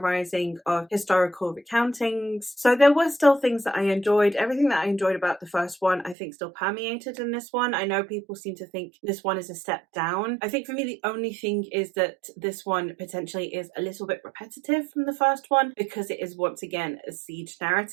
of historical recountings. So there were still things that I enjoyed. Everything that I enjoyed about the first one, I think, still permeated in this one. I know people seem to think this one is a step down. I think for me, the only thing is that this one potentially is a little bit repetitive from the first one, because it is, once again, a siege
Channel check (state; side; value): drops out; left; at 6.2 s